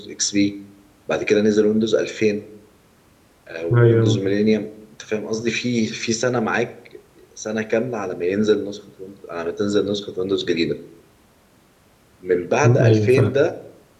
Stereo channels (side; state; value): both; identical; correlation 1.00